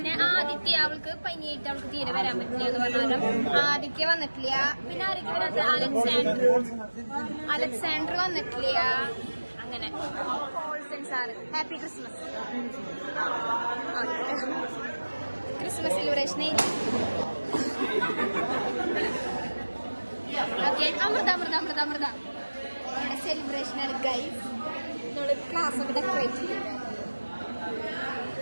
ആദിത്യ, അവൾക്ക് പനിയായിട്ട് അവൾക്ക് തീരെ വരാൻ പറ്റില്ല എന്ന് പറഞ്ഞാലും ആദിത്യ വന്നിട്ടില്ല. പിന്നെ ആരൊക്കെ വരാത്ത അലക്സാണ്ടർ വന്നിട്ടില്ല. അങ്ങനെ ഹാപ്പി ക്രിസ്മസ്. ക്രിസ്മസ് സെലിബ്രേഷനെ അമൃത നമ്മുടെ സെലിബ്രേഷനാണ് ഗൈസ്. നമ്മള് ക്ലാസ് ഒക്കെ ഡെക്കറേറ്റ് ചെയ്തിട്ട്.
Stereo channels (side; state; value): both; inverted; correlation -1.00